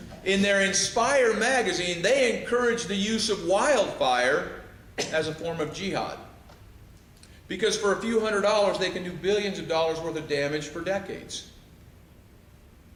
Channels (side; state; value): both; identical; correlation 1.00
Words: In their Inspire magazine, they encourage the use of wildfire as a form of jihad. Because for a few $100s, they can do billions of dollars worth of damage for decades.